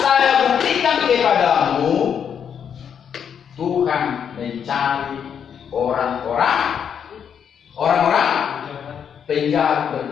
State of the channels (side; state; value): right; quieter; 7.9 dB